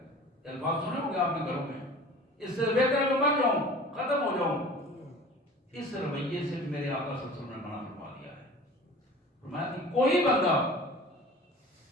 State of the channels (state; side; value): normal; both; correlation 0.42